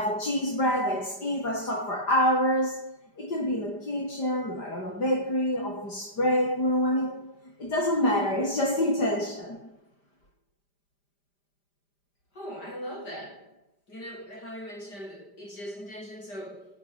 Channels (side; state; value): right; late; 5.0 ms